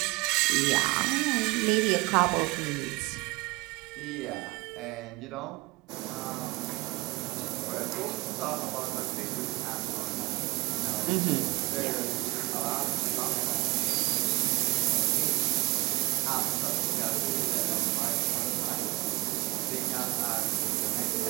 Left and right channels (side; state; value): left; quieter; 21.8 dB